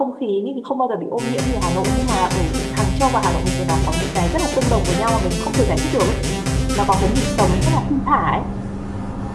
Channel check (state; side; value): identical; both; correlation 1.00